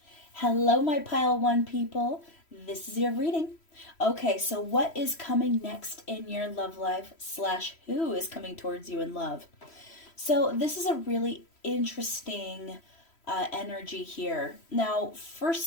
Hello, my pile 1 people. This is your reading. Okay, so what is coming next in your love life slash who is coming towards you in love? So this is a really interesting energy here. Now,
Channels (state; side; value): late; right; 3.1 ms